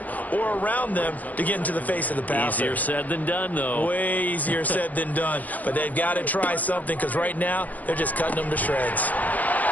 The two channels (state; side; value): late; right; 0.080 ms